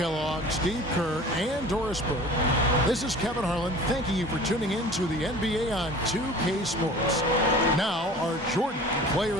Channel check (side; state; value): both; normal; correlation 0.43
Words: Steve Kerr, and Doris Burke, this is Kevin Harlan thanking you for tuning in to the NBA on 2K Sports. Now, our Jordan Player